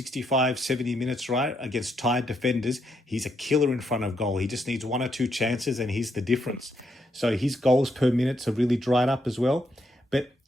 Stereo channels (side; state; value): both; normal; correlation 0.78